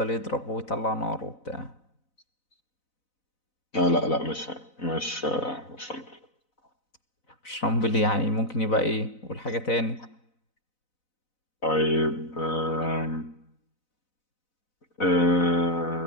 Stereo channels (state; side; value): late; right; 4.0 ms